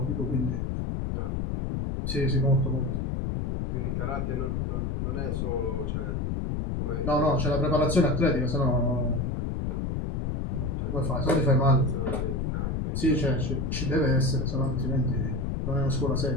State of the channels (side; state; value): left; noise; rumble, 1 dB below the sound